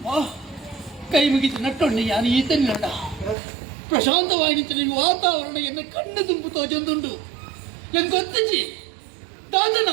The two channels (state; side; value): drops out; left; at 3.4 s